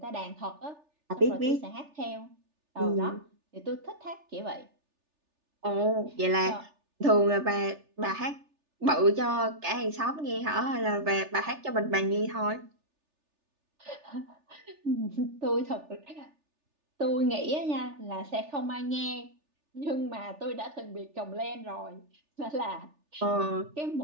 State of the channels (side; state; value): left; late; 3.4 ms